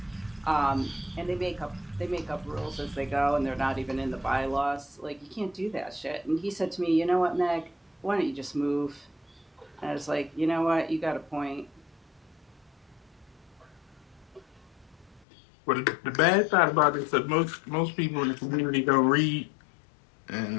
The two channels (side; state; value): right; drops out; at 15.2 s